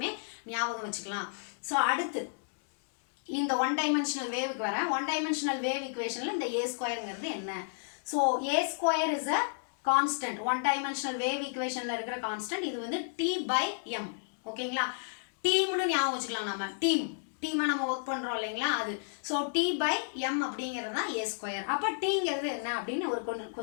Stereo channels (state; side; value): silent; right; digital silence